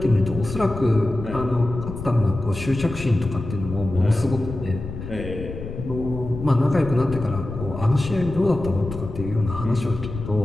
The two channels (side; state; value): left; noise; rumble, 9 dB below the sound